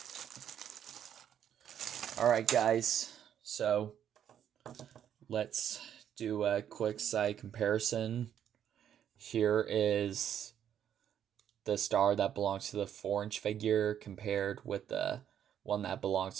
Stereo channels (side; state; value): left; quieter; 9.6 dB